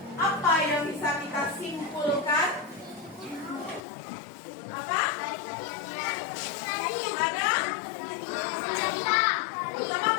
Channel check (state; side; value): drops out; right; at 3.8 s